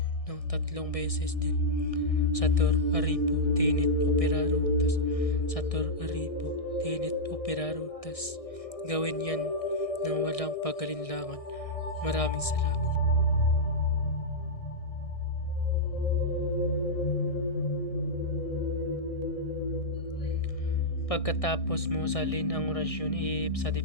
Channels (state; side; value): late; right; 1.6 ms